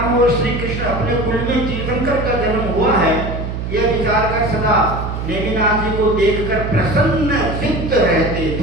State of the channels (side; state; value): right; noise; hum, 5 dB below the sound